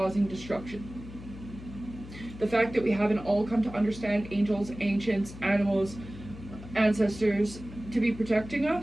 destruction. The fact that we haven't all come to understand angels, ancients, animals, ancestors to be protecting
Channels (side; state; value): left; noise; hum, 14 dB below the sound